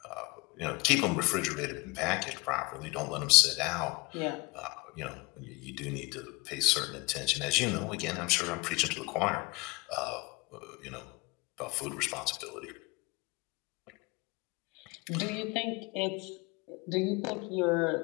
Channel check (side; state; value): right; quieter; 25.6 dB